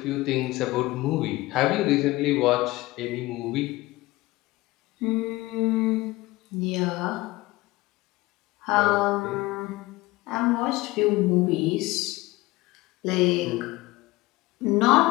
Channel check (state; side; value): quieter; right; 19.9 dB